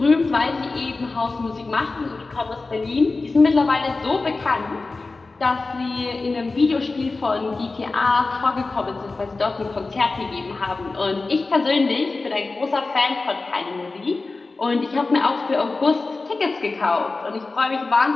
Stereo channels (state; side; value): quieter; right; 3.6 dB